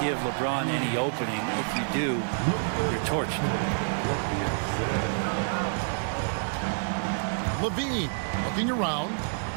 give LeBron any opening. If you do, you're torched. Levine looking around.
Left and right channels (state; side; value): silent; left; 58 dB below the other